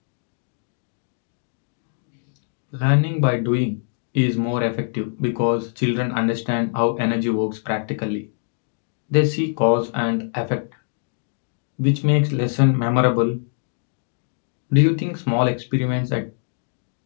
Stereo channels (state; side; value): silent; right; digital silence